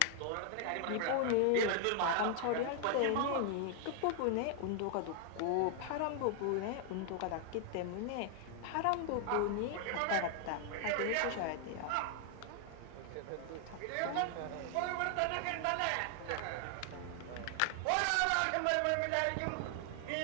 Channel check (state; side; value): different; both; correlation 0.00